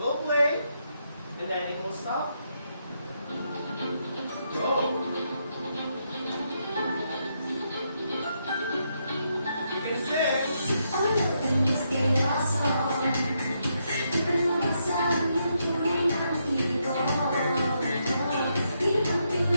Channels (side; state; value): both; inverted; correlation -0.79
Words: play, and then it will stop. Go! You can sing.